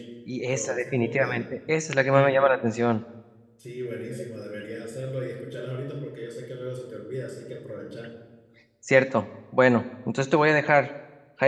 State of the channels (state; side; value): identical; both; correlation 1.00